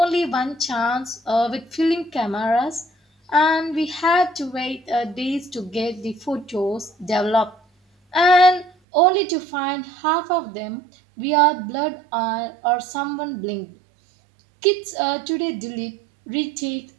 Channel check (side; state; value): left; drops out; at 8.7 s